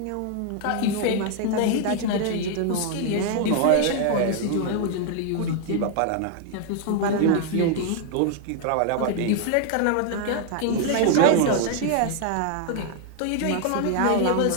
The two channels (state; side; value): different; both; correlation 0.00